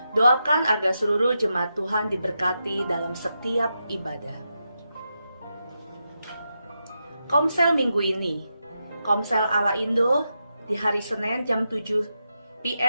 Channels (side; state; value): both; inverted; correlation -0.87